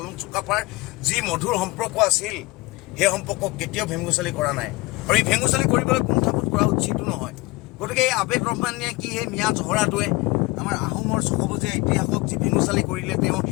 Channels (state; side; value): quieter; right; 22.9 dB